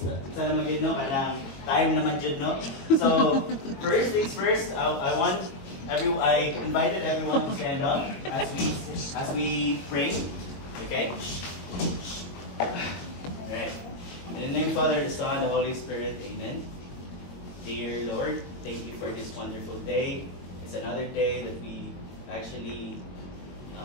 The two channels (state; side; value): late; right; 22 ms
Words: naman yun, no? Parang time naman yun, no? So, first things first, I invited everyone to stand up as we pray. Okay? Alright. In the name of the Father, the Son, the Holy Spirit, amen. Dear Lord, thank you for this wonderful day. It's another day that we actually